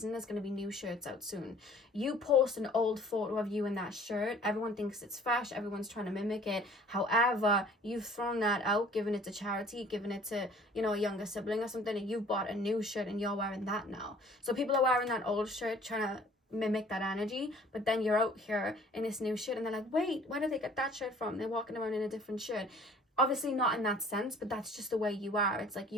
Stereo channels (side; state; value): both; normal; correlation 0.53